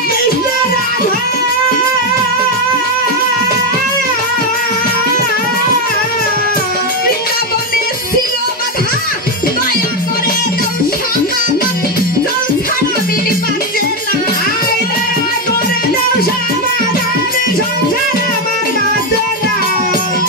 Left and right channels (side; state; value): both; normal; correlation 0.08